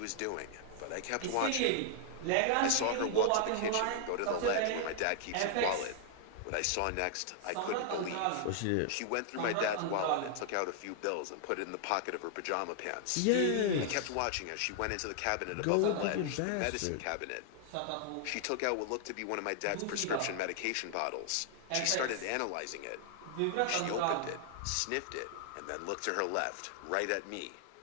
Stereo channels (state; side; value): different; both; correlation 0.00